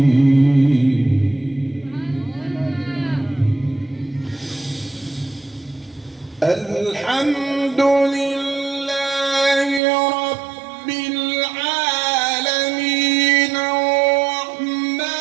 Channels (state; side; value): drops out; left; at 9.8 s